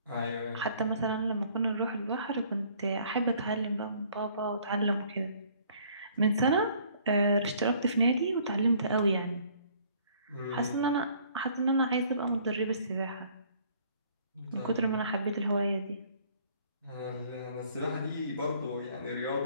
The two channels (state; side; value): inverted; both; correlation -0.59